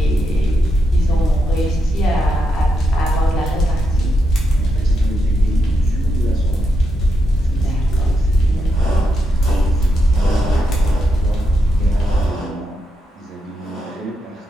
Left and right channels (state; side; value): normal; both; correlation 0.83